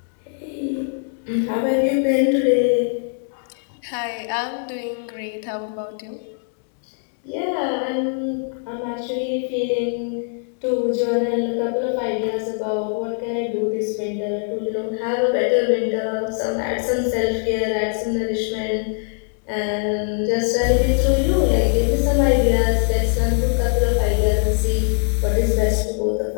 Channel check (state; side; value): silent; right; 60 dB below the other